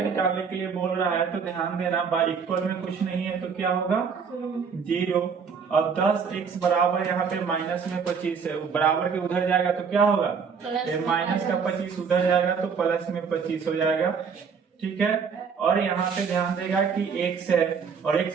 के लिए बोल रहा है। तो ध्यान देना बाई इक्वल में कुछ नहीं है तो क्या होगा? 0। अब 10x बराबर यहाँ पे माइनस में 25 है, बराबर के उधर जाएगा तो क्या होगा? माइनस का 25 उधर जाएगा तो प्लस में 25 हो जाएगा। ठीक है। और यहाँ पे ध्यान देगा कि x है और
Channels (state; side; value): quieter; left; 6.1 dB